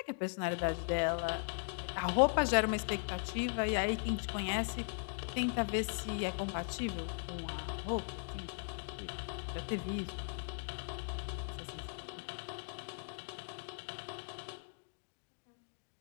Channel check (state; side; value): silent; right; 52 dB below the other